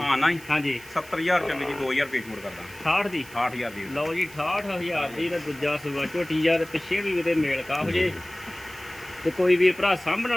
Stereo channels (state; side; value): noise; right; hiss, 20 dB below the sound